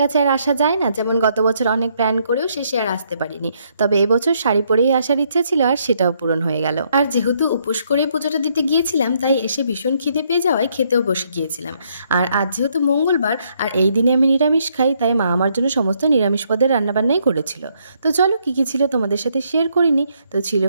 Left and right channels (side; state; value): both; inverted; correlation -0.72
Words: আর আসা যায় না। যেমন গত বছর অনেক প্ল্যান করেও শেষে আর আসতে পারিনি, তবে এবছর শাড়ি পরেই আসার ইচ্ছে ছিল আর সেটাও পূরণ হয়ে গেল। আর যেহেতু উপোস করে পুজোটা দিতে গিয়েছিলাম, তাই এসে ভীষণ খিদে পেয়ে যাওয়ায় খেতেও বসে গিয়েছিলাম। আর আজ যেহেতু মঙ্গলবার আর এই দিনে আমি নিরামিষ খাই, তাই মা আমার জন্য সমস্ত নিরামিষ পদের রান্নাবান্নাই করেছিল। তো চলো কী কী ছিল তোমাদের সাথে শেয়ার করিনি। তো ছিল